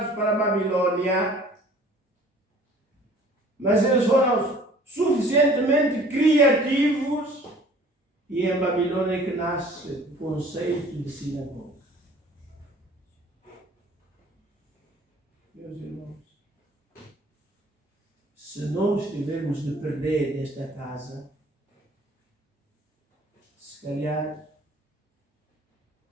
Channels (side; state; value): both; normal; correlation 0.51